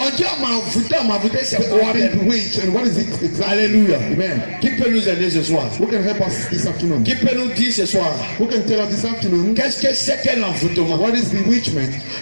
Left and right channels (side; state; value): both; inverted; correlation -1.00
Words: dit on m'a envoûté, c'est But quoi? I've been bewitched, and what is it exactly? Alléluia. Amen. Qui peut nous aider ce soir? Who can help us this afternoon? Qui peut nous dire ce soir? Who can tell us this afternoon Qu'est-ce que c'est qu'un envoûtement? what is bewitchment?